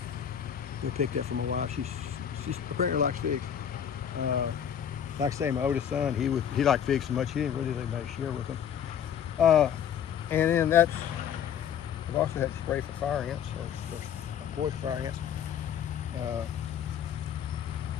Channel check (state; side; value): quieter; right; 8.8 dB